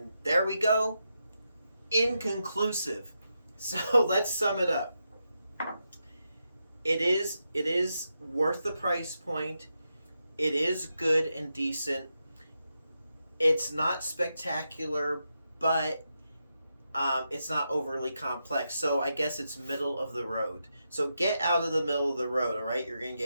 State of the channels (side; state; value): both; inverted; correlation -0.86